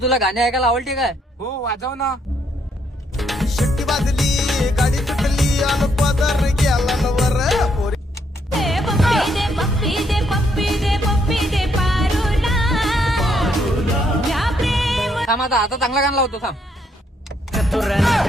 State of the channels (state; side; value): normal; both; correlation 0.73